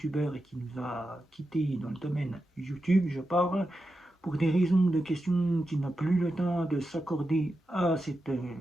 et qui nous a quittés dans le domaine YouTube, je parle pour des raisons de questions qu'il n'a plus le temps de s'accorder à cette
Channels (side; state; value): both; normal; correlation 0.89